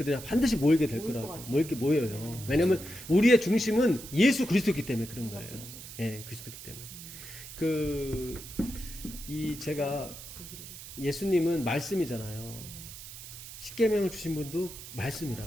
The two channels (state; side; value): noise; right; hiss, 13 dB below the sound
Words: 반드시 모이게 될 모일 것 거라고. 같아요. 모이게 모여요. 왜냐면 우리의 중심은 예수 그리스도이기 때문에 그런 거예요. 예, 그리스도이기 때문에. 제가 예수님은 말씀이잖아요. 십계명을 주신 분도